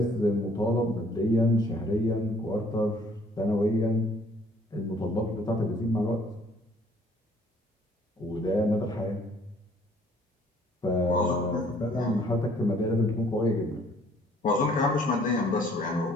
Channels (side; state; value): both; normal; correlation 0.59